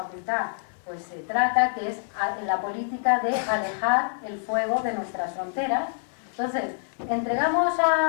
pues se trata, que es la política de alejar el fuego de nuestras fronteras. Entonces, ¿entregamos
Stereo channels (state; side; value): silent; right; digital silence